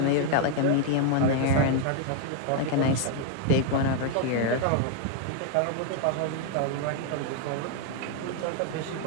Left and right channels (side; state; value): both; different; correlation 0.00